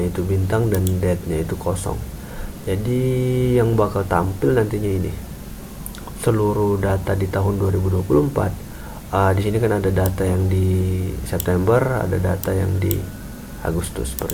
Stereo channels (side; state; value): both; identical; correlation 1.00